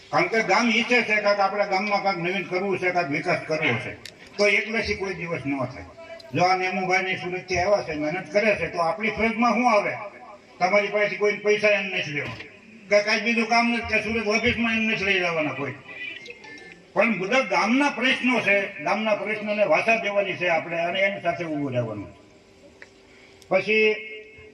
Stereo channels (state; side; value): identical; both; correlation 1.00